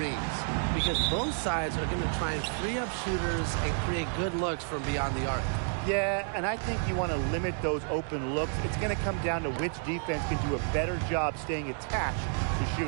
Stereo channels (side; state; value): left; silent; 58 dB below the other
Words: because both sides are going to try and free up shooters and create good looks from beyond the arc. Yeah, and I think you want to limit those open looks. It's going to come down to which defense can do a better job staying attached to